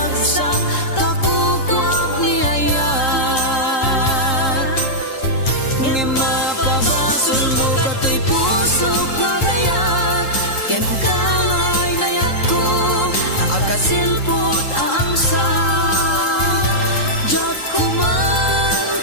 takukwak ni ayat. Nga mapabasol mo kato'y pusok na gayat. Ken kangay nayat ko, akasilpot aangsa. Jak kuman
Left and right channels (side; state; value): right; late; 3.8 ms